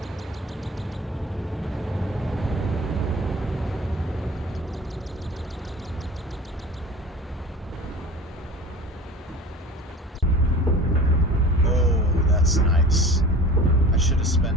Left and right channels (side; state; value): both; normal; correlation 0.39